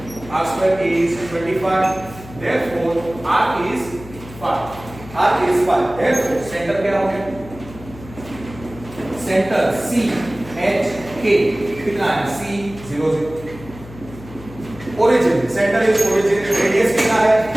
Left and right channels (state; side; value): noise; left; hum, 16 dB below the sound